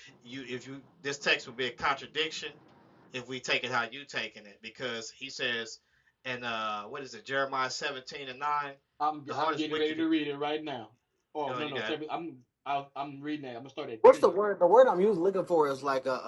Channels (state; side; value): identical; both; correlation 1.00